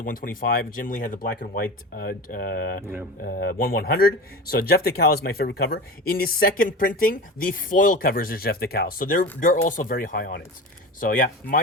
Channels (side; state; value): both; normal; correlation 0.30